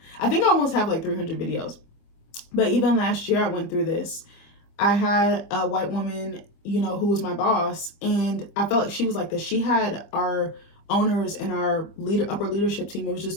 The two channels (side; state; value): right; late; 25 ms